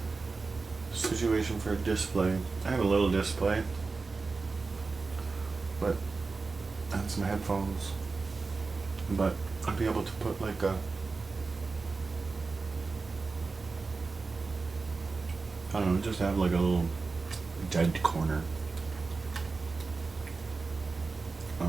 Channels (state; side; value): quieter; left; 4.1 dB